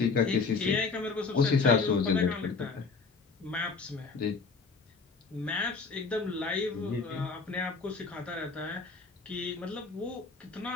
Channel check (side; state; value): right; quieter; 4.6 dB